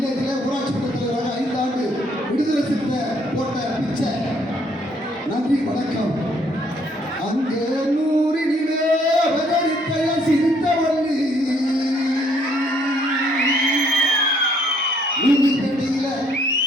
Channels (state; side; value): normal; both; correlation 0.66